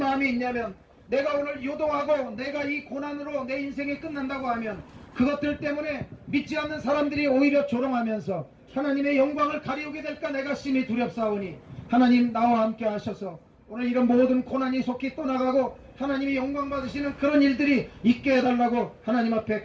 있냐면 내가 오늘 요동하고 내가 이 고난으로 내 인생이 끝난다고 하면 그것들 때문에 믿지 않는 사람들이 오히려 조롱하면서 하나님의 영광을 가리우게 될까 내가 심히 두렵사오니 하나님 나와 함께 하셔서 오늘 이런 모든 고난이 속히 떠나가고 하나님이 영광 받으시는 그런 일들이 있게 해달라고 하나님 앞에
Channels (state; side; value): identical; both; correlation 1.00